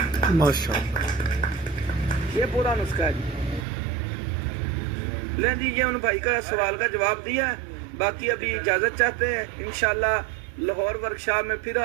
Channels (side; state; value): left; drops out; at 3.7 s